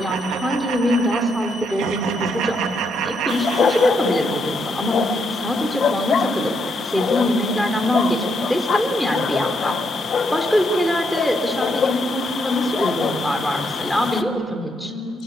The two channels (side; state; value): both; normal; correlation 0.77